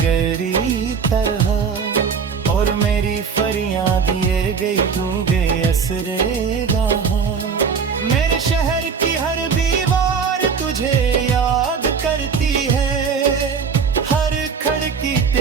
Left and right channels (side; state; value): left; quieter; 6.0 dB